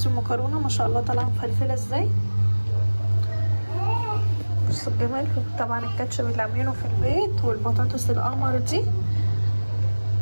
المكرونه ما شاء الله طالعه مفلفله ازاي. بصوا الجمال. طبعا الكاتشب اللي عاملينه في البيت والبطاطس القمر دي.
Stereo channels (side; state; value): both; inverted; correlation -1.00